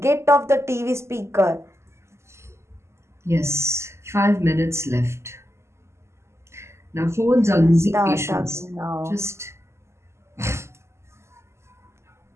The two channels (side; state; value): left; late; 0.13 ms